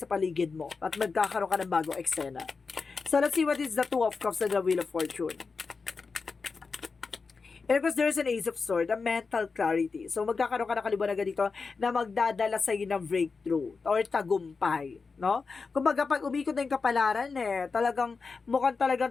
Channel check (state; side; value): quieter; right; 4.7 dB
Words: paligid mo at magkakaroon ka ng bagong eksena. So, let's see what is the Two of Cups and the Wheel of Fortune. And of course, there's an Ace of Swords, a mental clarity. So, magkakaroon ka ng kaliwanagan dito na magdadala sa iyo ng breakthrough or tagumpay, no? Kumbaga, pag umikot na yung kapalaran, mukhang